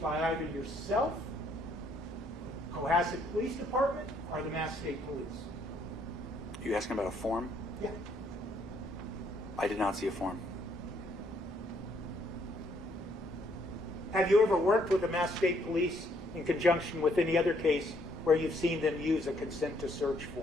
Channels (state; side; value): normal; both; correlation 0.69